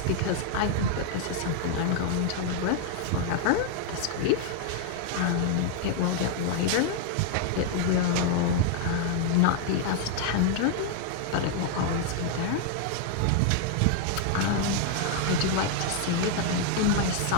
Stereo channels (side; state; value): both; different; correlation 0.00